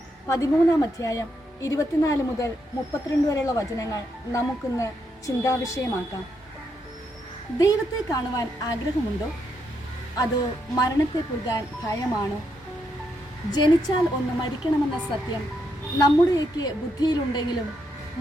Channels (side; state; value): both; normal; correlation 0.79